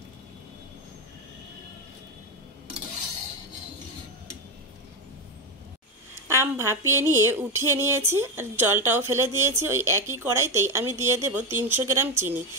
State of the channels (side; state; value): both; normal; correlation 0.13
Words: আম ভাপিয়ে নিয়ে উঠিয়ে নিয়েছি, আর জলটাও ফেলে দিয়েছি। ওই একই কড়াইতেই আমি দিয়ে দেব 300 গ্রাম চিনি।